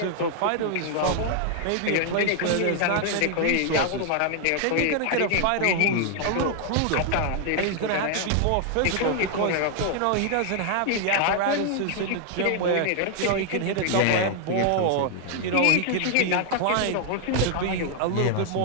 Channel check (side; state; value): both; different; correlation 0.00